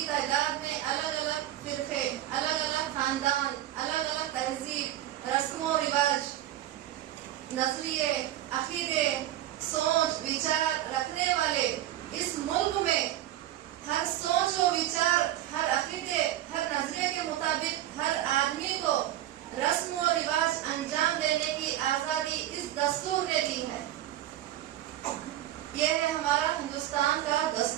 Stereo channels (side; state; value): left; quieter; 13.2 dB